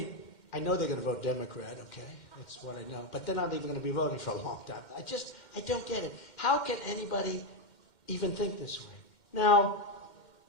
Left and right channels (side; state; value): right; late; 2.1 ms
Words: I know they're going to vote Democrat, okay? That's what I know. But they're not even going to be voting for a long time. I don't get it. How can anybody even think this way. Now,